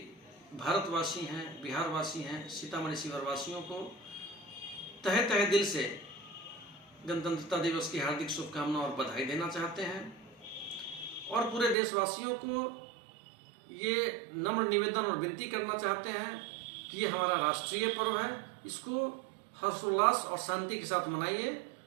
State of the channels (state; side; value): drops out; left; at 11.8 s